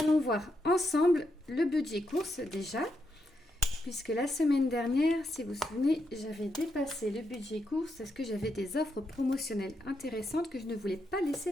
voir ensemble le budget course déjà. Puisque la semaine dernière, si vous vous souvenez, j'avais dépassé le budget course parce que j'avais des offres promotionnelles intéressantes que je ne voulais pas laisser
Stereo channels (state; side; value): normal; both; correlation 0.82